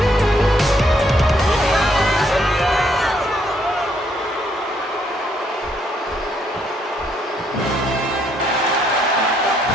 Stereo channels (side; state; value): both; normal; correlation 0.71